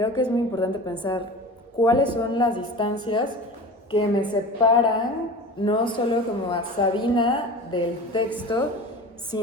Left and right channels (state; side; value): normal; both; correlation 0.35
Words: que es muy importante pensar cuáles son las distancias que me separan, no solo como a Sabina del texto,